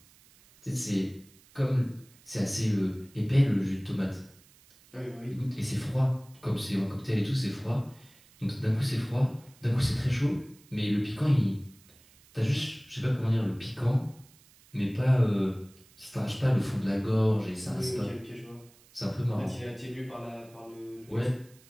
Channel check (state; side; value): noise; right; hiss, 27 dB below the sound